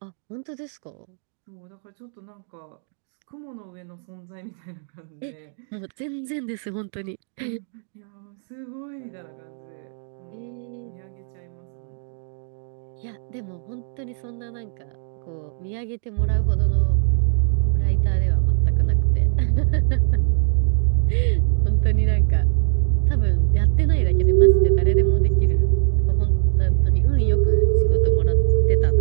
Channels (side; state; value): left; silent; digital silence